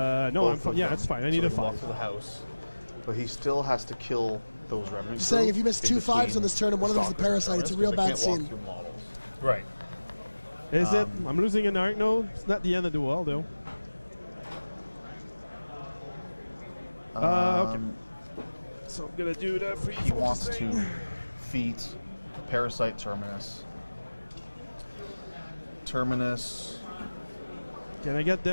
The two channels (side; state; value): both; inverted; correlation -1.00